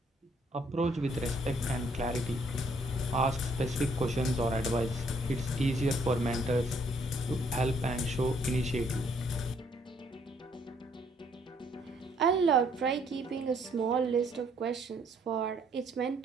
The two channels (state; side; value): normal; both; correlation 0.66